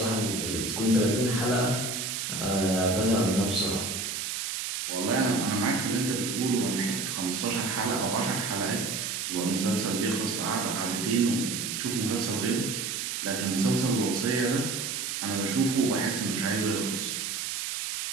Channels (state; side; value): noise; right; hiss, 3 dB below the sound